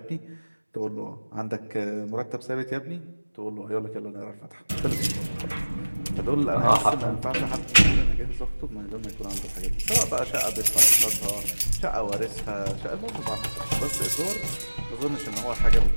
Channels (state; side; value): inverted; both; correlation -1.00